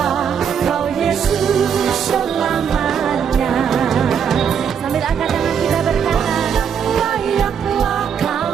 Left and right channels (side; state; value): left; quieter; 7.5 dB